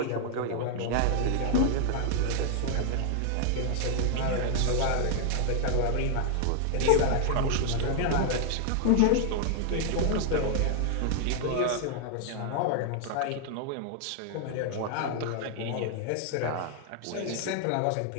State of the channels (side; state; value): both; different; correlation 0.00